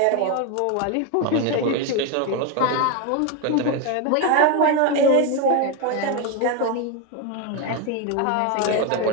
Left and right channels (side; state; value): both; different; correlation 0.02